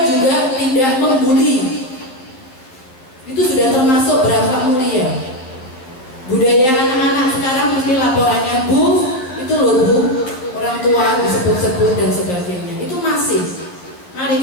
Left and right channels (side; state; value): right; late; 11 ms